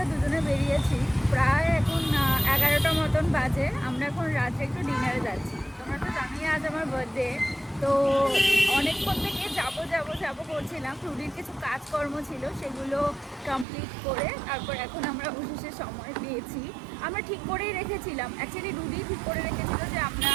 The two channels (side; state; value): left; drops out; at 13.7 s